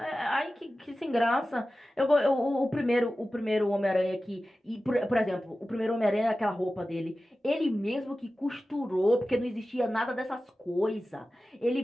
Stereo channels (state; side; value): normal; both; correlation 0.95